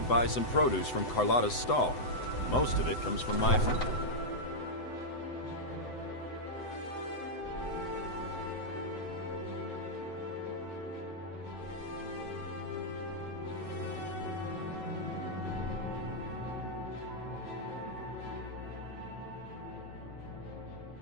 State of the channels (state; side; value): late; right; 7.9 ms